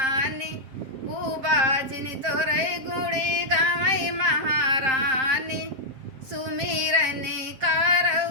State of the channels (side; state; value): left; late; 7.6 ms